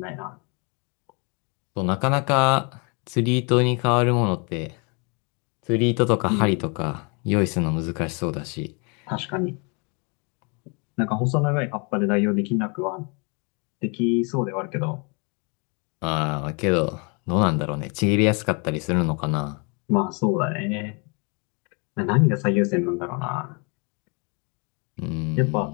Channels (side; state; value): right; quieter; 33.5 dB